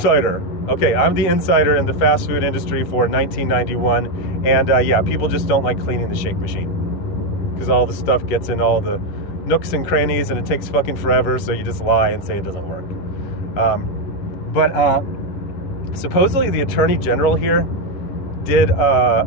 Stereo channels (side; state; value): right; late; 11 ms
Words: Okay, I'm the insider in the fast food industry for 1991. And yeah, people just don't like cleaning the Shake Machine because all the stuff gets in all the nooks and crannies and it takes fucking forever. So you just lie and say it doesn't work. But supposedly the Attorney General here did